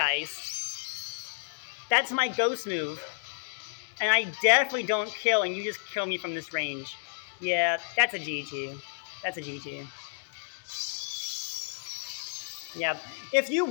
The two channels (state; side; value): silent; right; digital silence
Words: That's my ghost move, and I definitely don't kill, and you just kill me from this range. Yeah, that's a GG. Yeah, if you